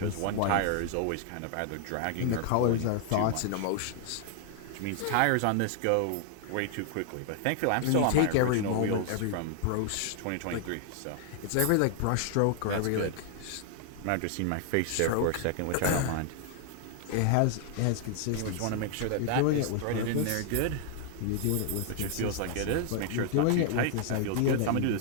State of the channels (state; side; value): different; both; correlation 0.00